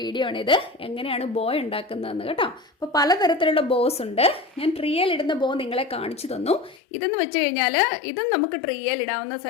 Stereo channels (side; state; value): right; drops out; at 6.8 s